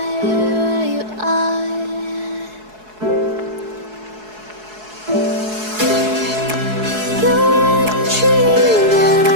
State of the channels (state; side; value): late; left; 4.7 ms